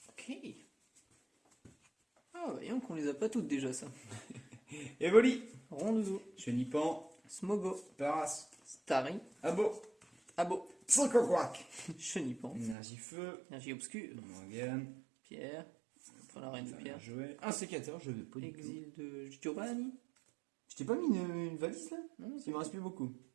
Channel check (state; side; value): drops out; left; at 12.8 s